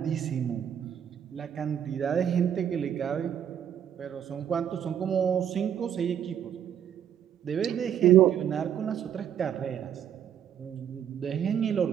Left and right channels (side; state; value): left; quieter; 9.5 dB